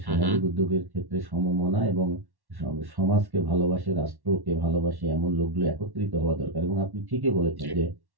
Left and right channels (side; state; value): left; late; 1.1 ms